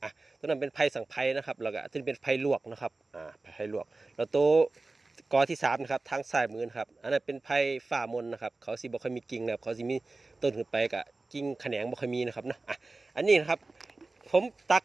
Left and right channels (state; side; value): quieter; left; 3.4 dB